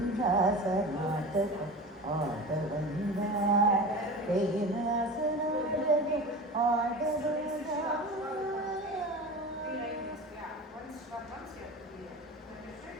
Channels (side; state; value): both; normal; correlation 0.32